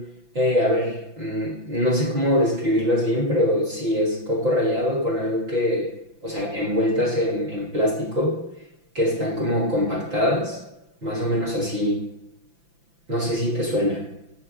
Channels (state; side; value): late; left; 5.9 ms